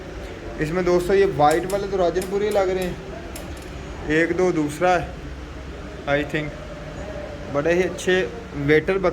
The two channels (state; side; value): identical; both; correlation 1.00